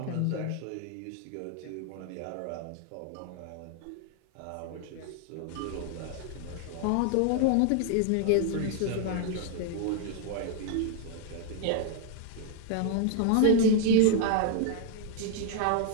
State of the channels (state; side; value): different; both; correlation 0.00